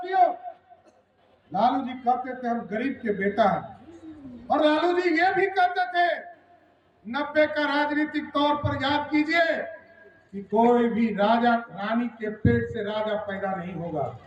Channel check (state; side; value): identical; both; correlation 1.00